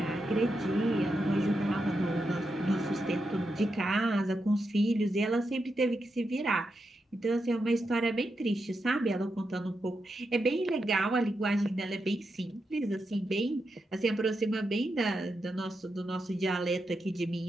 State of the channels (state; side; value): normal; both; correlation 0.86